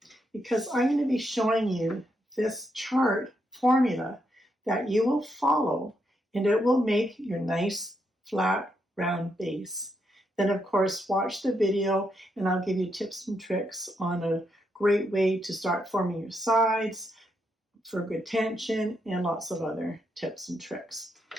because I'm going to be showing you this chart formula that you will follow, and it will make your nice flat round base. Then of course watch the video and I'll give you tips and tricks on a great way to start forming your sides for good tension and lots of other tips and tricks.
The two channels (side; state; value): both; normal; correlation 0.80